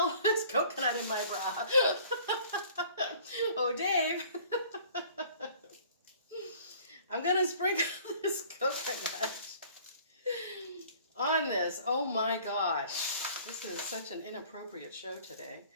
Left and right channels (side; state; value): both; inverted; correlation -0.52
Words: There's coconut in my bra. Oh, Dave. I'm going to sprinkle this coconut on this. Oh my gosh. This is such an inappropriate show today.